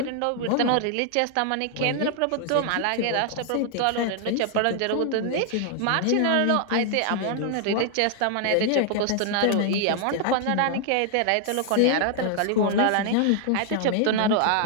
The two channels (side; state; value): both; different; correlation 0.00